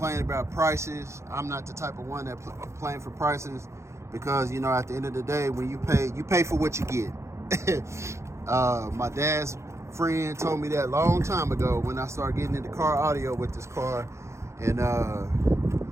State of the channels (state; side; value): late; left; 0.14 ms